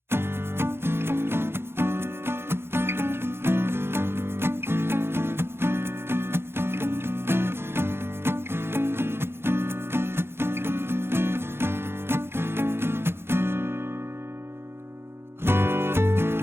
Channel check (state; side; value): late; left; 0.11 ms